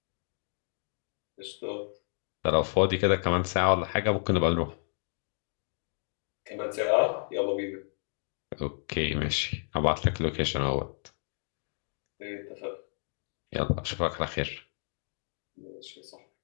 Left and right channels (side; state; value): right; silent; digital silence